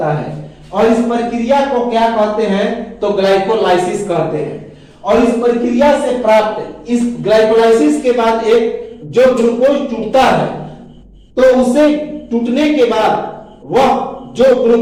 है और इस प्रक्रिया को क्या कहते हैं? तो ग्लाइकोलाइसिस कहते हैं। और इस प्रक्रिया से प्राप्त इस ग्लाइकोलाइसिस के बाद एक जो ग्लूकोज टूटता है तो उसे टूटने के बाद वह जो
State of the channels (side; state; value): both; identical; correlation 1.00